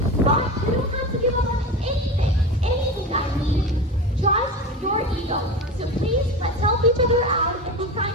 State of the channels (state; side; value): normal; both; correlation 0.26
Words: But you don't have to give up on anything I mean, just your ego. So please, let's help each other out and be